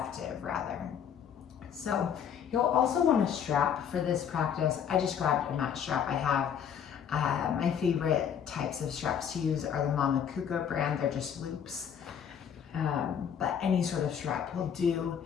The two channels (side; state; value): right; quieter; 8.2 dB